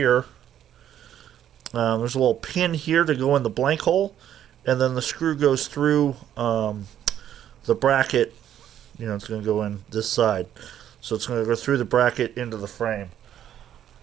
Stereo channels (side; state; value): left; quieter; 10.6 dB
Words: there's a little pin here to go in the blank hole. And then the screw goes through the bracket. You know, it's going to go in this side. So it's going to go through the bracket into the frame.